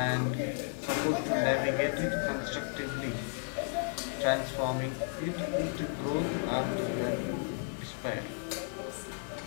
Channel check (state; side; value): silent; right; 55 dB below the other